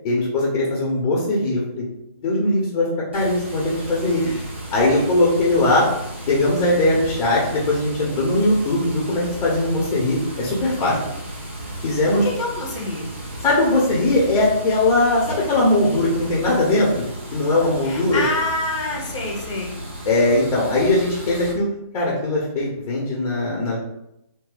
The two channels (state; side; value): inverted; both; correlation -0.47